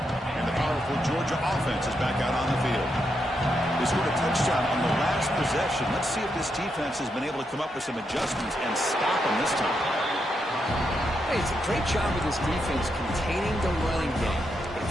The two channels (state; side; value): normal; both; correlation 0.82